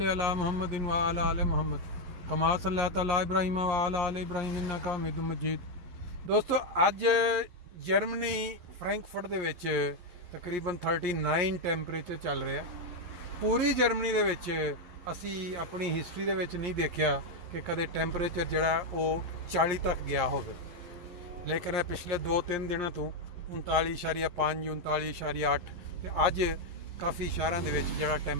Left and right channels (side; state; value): left; late; 11 ms